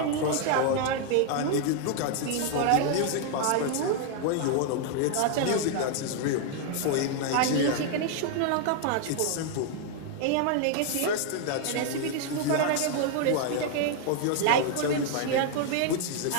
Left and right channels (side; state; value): both; different; correlation 0.00